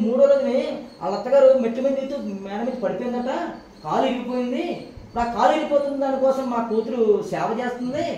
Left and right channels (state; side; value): identical; both; correlation 1.00